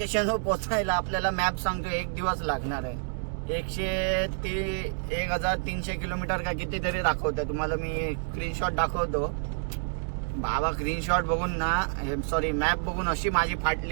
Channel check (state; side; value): silent; left; digital silence